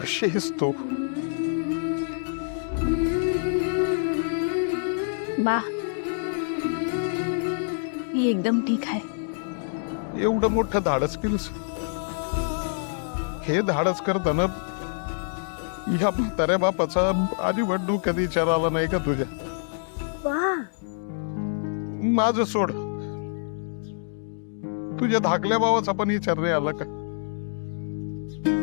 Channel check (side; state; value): right; silent; digital silence